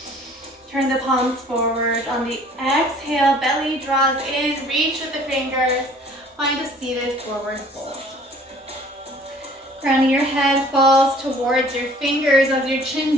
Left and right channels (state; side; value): normal; both; correlation 0.53